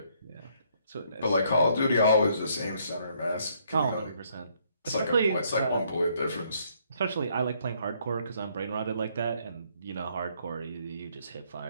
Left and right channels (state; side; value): inverted; both; correlation -0.68